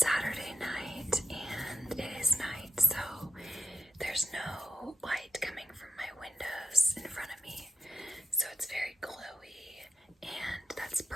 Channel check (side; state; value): both; normal; correlation 0.87